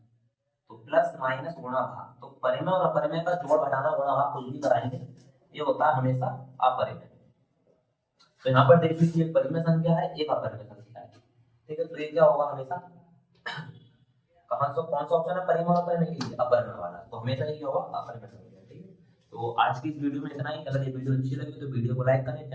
तो प्लस माइनस गुणा भाग, तो परिमेय और अपरिमेय का जोड़ घटाना गुणा भाग कुछ भी कराएंगे, ये होता है हमेशा अपरिमेय। तो यहाँ पर देख लीजिए, एक परिमेय संख्या है, एक अपरिमेय संख्या है। ठीक है, तो ये क्या होगा हमेशा, कौन सा ऑप्शन है परिमेय और अपरिमेय के लिए, अपरिमेय वाला, तो हमेशा ये होगा अपरिमेय संख्या। ठीक है, तो आज की इस वीडियो में इतना ही। अगर ये वीडियो अच्छी लगी तो वीडियो को लाइक करें,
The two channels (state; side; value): identical; both; correlation 1.00